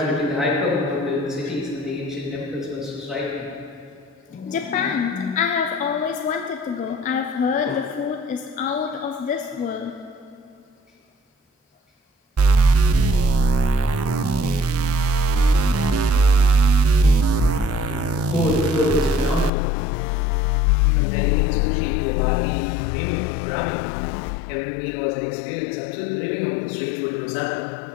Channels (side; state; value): right; drops out; at 19.5 s